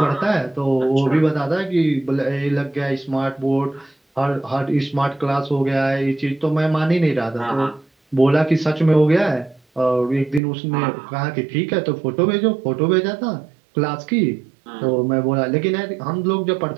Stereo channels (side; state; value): left; drops out; at 10.4 s